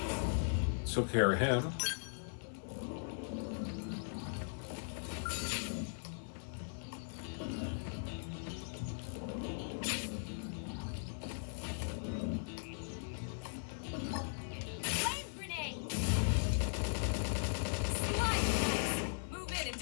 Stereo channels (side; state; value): right; silent; 52 dB below the other